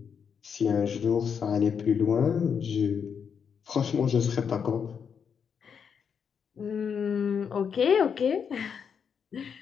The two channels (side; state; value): right; quieter; 6.9 dB